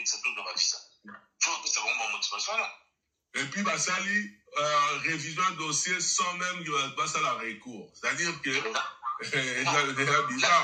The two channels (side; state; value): both; identical; correlation 1.00